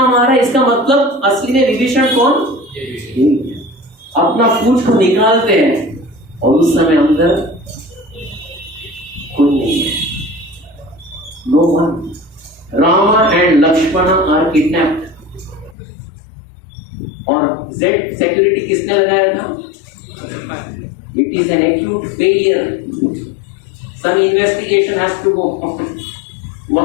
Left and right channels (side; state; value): right; drops out; at 15.8 s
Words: आ रहा है, इसका मतलब असली में विभीषण कौन? अपना पूंछ को निकालते हैं और उस समय अंदर कोई नहीं है, no one. Rama and Lakshman are kidnapped. और Z सिक्योरिटी किसने लगाया था? It is an acute failure, some investigation has to go.